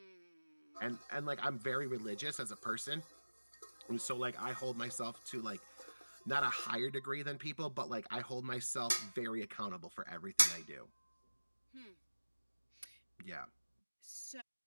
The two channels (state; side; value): inverted; both; correlation -1.00